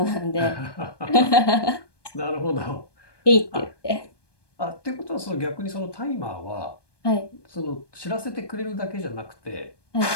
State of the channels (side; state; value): right; late; 1.2 ms